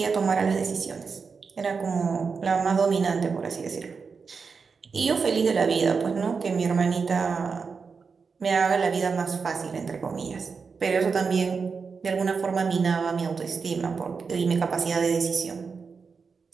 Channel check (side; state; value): left; quieter; 5.2 dB